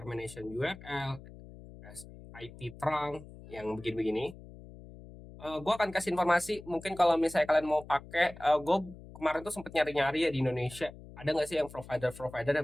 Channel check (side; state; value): left; noise; hum, 17 dB below the sound